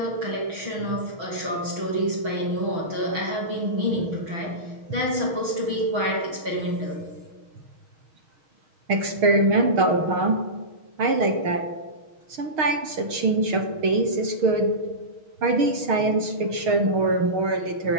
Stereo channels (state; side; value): late; left; 6.5 ms